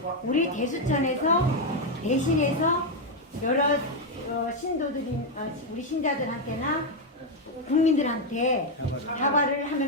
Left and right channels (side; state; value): both; normal; correlation 0.03